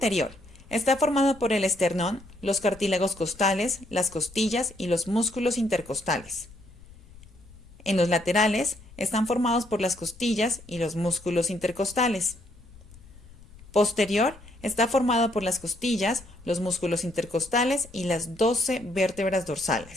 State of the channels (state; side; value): noise; left; rumble, 21 dB below the sound